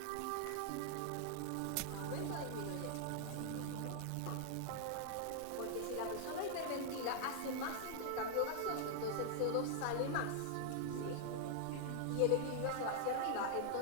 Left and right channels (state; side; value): different; both; correlation 0.00